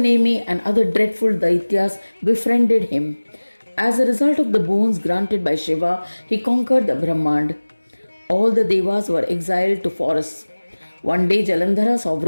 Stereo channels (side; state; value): both; inverted; correlation -1.00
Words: and other dreadful deities befriended him. As a result of the boons granted by Shiva, he conquered the Brahmand. All the devas were exiled to forests. One day Jalandhara saw